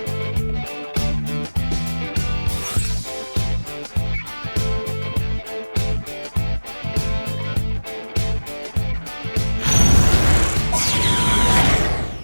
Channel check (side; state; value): both; inverted; correlation -1.00